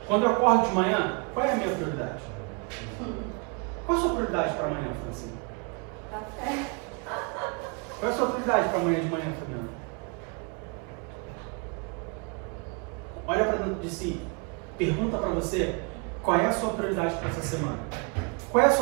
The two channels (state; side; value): quieter; left; 34.0 dB